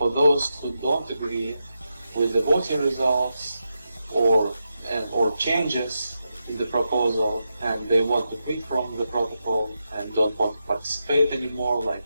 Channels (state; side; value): inverted; both; correlation -0.87